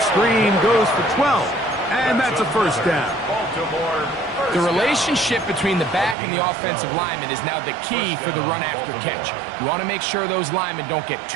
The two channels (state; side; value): drops out; left; at 6.2 s